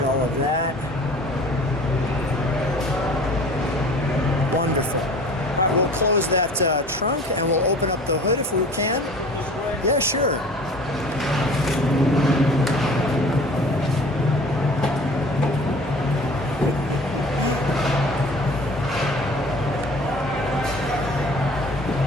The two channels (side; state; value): both; normal; correlation 0.45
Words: all of that. Wonderful. All right, we'll close that trunk and we'll open up the hood if we can. Yeah, sure.